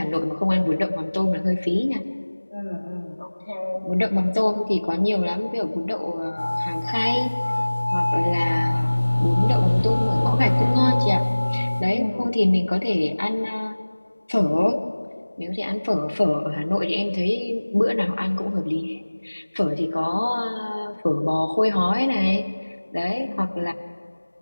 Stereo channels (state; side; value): inverted; both; correlation -1.00